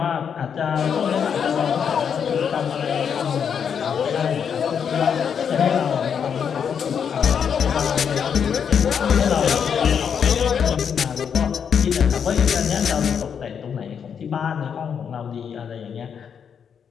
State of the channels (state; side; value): quieter; right; 7.4 dB